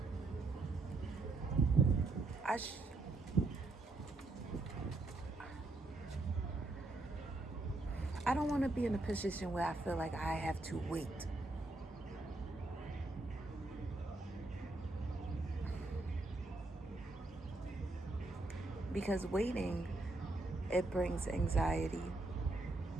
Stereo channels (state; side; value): quieter; left; 3.1 dB